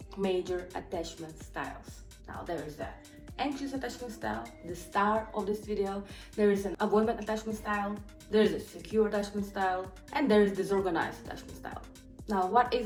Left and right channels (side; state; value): both; identical; correlation 1.00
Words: major attachment styles. Now there is the anxious attachment style, the star of this video. There is an avoidant attachment style, there is a secure attachment style, and there is disorganized attachment style. Now, what is